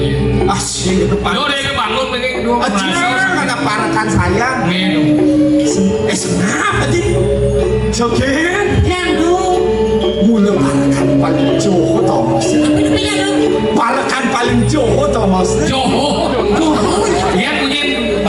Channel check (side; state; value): both; identical; correlation 1.00